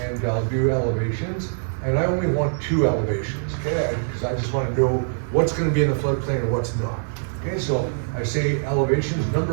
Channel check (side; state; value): left; silent; digital silence